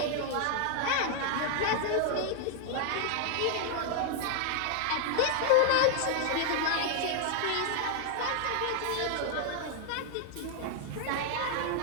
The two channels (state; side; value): different; both; correlation 0.00